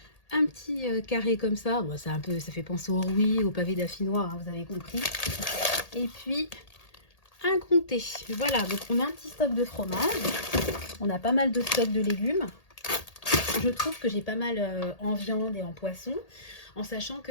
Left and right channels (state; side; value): late; right; 1.8 ms